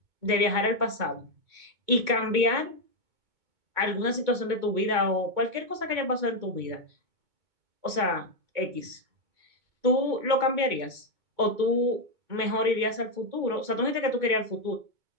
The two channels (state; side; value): late; left; 2.2 ms